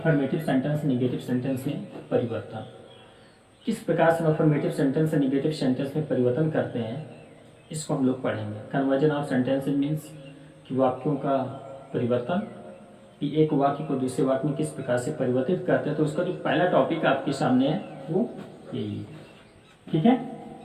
सेंटेंस नेगेटिव सेंटेंस में परिवर्तन। किस प्रकार से अफर्मेटिव सेंटेंस से नेगेटिव सेंटेंस में परिवर्तन करते हैं, इसको हम लोग पढ़ेंगे। कन्वर्जन ऑफ सेंटेंसेज मीन्स कि वाक्यों का परिवर्तन, कि एक वाक्य को दूसरे वाक्य में किस प्रकार से परिवर्तित करते हैं। तो उसका जो पहला टॉपिक आपके सामने है वो यही है, ठीक है।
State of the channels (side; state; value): both; identical; correlation 1.00